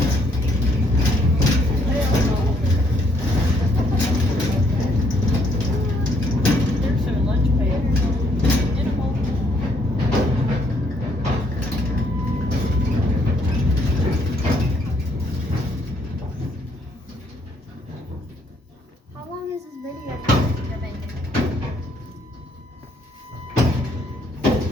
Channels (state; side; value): normal; both; correlation 0.69